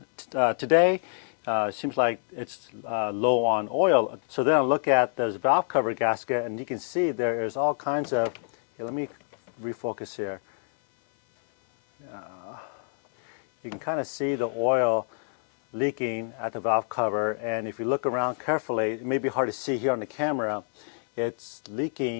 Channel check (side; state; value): right; silent; 60 dB below the other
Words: today, it seems like it's low on oil. So then I look at this valve cover gasket, and you can see there is all kinds of, here, let me refocus here. You can kind of see the oil leaking at the valve cover, and if you look around carefully, it may be hard to see here on the camera, it's